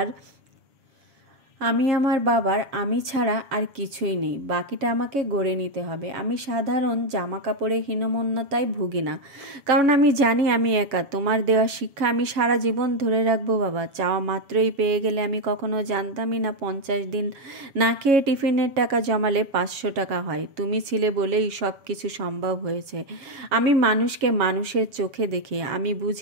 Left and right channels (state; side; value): late; left; 7.2 ms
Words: বাবার আমি ছাড়া আর কিছুই নেই, বাকিটা আমাকে গড়ে নিতে হবে। আমি সাধারণ জামা কাপড়ে হীনমন্যতায় ভুগি না, কারণ আমি জানি আমি একা। তোমার দেওয়া শিক্ষা আমি সারা জীবন ধরে রাখবো বাবা। চাওয়া মাত্রই পেয়ে গেলে আমি কখনো জানতামই না 50 দিন না খেয়ে টিফিনের টাকা জমালে 500 টাকা হয়। তুমি ছিলে বলেই সব কিছু সম্ভব হয়েছে। আমি মানুষকে মানুষের চোখে দেখি, আমি